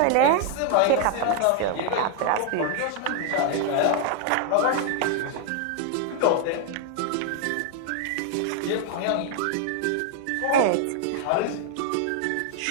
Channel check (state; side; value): different; both; correlation 0.00